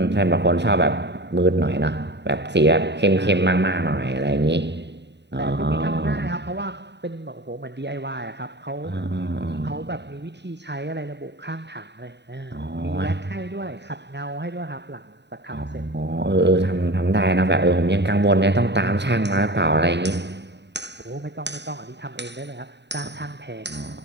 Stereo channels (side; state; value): left; late; 0.50 ms